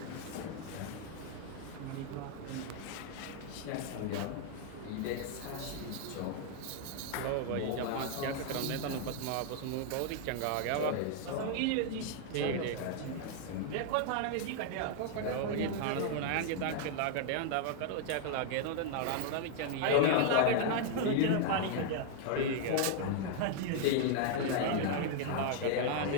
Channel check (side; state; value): both; different; correlation 0.00